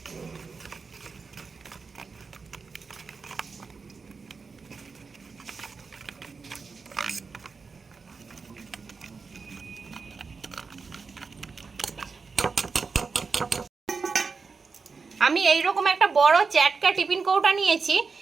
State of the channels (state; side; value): quieter; left; 4.8 dB